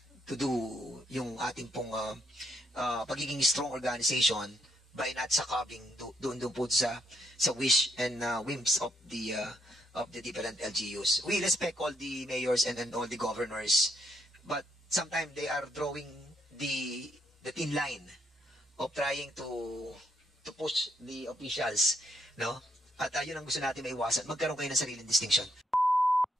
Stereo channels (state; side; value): normal; both; correlation 0.76